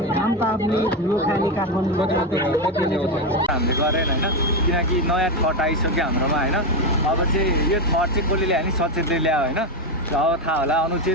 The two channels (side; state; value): both; normal; correlation 0.11